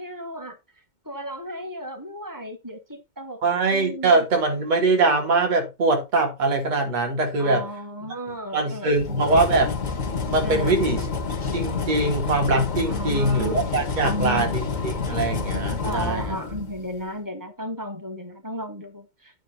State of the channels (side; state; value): left; late; 2.2 ms